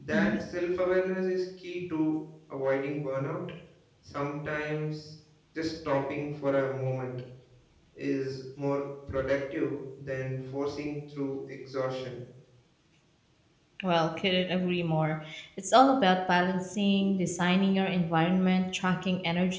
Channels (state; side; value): identical; both; correlation 1.00